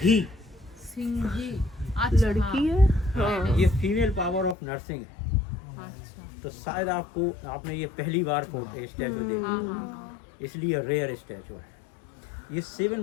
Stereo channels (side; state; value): right; drops out; at 4.5 s